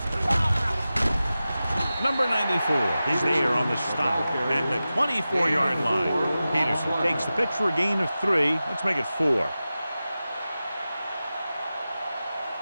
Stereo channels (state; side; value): inverted; both; correlation -0.94